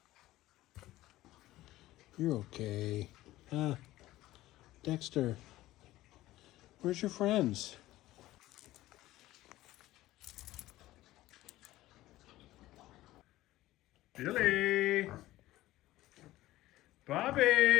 You're okay. Dexter, where's your friends? Billy!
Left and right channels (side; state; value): right; quieter; 16.3 dB